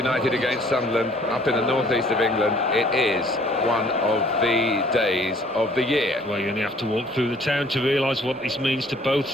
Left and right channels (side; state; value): both; normal; correlation 0.57